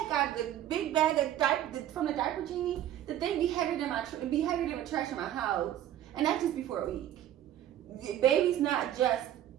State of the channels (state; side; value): quieter; left; 11.8 dB